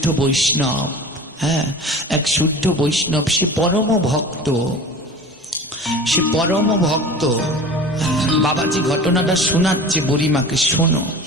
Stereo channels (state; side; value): normal; both; correlation 0.37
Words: বৈষ্ণব, এক শুদ্ধ বৈষ্ণব, সে পরম ভক্ত, বাবাজি ঘটনাটা শোনাচ্ছে বুড়িমাকে, শোনো।